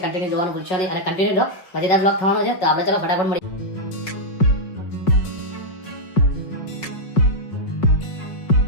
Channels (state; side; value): late; right; 5.4 ms